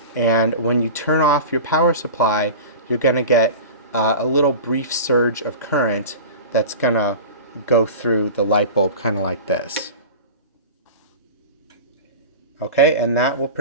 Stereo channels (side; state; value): both; inverted; correlation -0.32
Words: and when you turn off your power supply, you're going to get a little brief surge of current that's going to go through the light bulb kind of like this. Okay, and that will